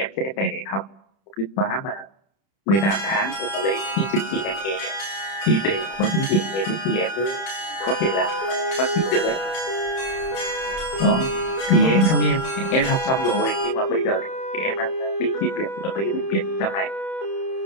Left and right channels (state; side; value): late; right; 31 ms